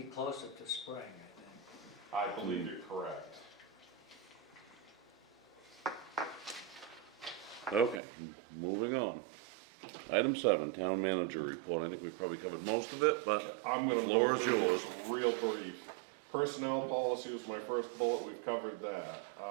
closer to spring, I think. I believe you're correct. Okay, moving on. Item 7, town manager report. I think we probably covered most of it, but I'm the gonna floor go is through yours. this real brief. Personnel policy was my first bullet, we've covered that.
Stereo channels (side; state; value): left; drops out; at 8.0 s